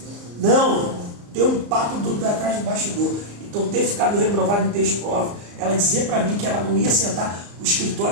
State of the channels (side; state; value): left; late; 34 ms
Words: Não, tem um papo atrás do bastidor. Então ter ficado reprovado em 3 provas, ela dizer para mim que ela não ia sentar O